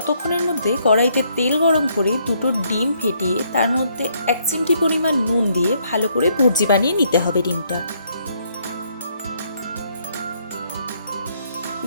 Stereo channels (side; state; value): both; inverted; correlation -0.71